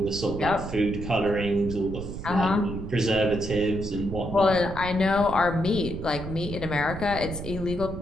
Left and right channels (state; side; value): noise; right; rumble, 8 dB below the sound